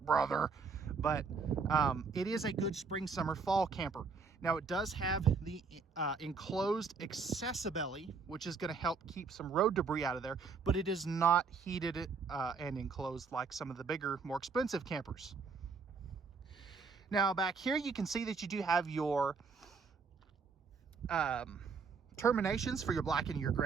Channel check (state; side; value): quieter; left; 4.9 dB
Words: brother, but it is a good spring, summer, fall camper. Now, it does have the enclosed accessibelly, which is going to help keep some road debris out of there, but it is not heated and enclosed like some of the bigger, more expensive campers. Now, back here, you can see that you do have your terminations for your black and your